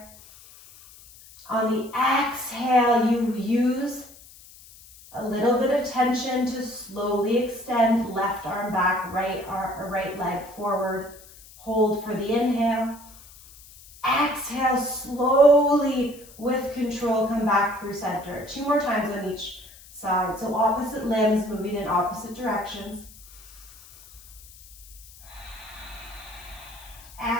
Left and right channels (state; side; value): noise; left; hiss, 21 dB below the sound